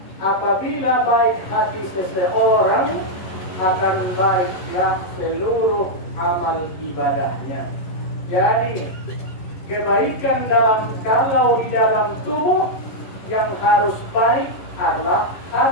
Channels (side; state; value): right; late; 11 ms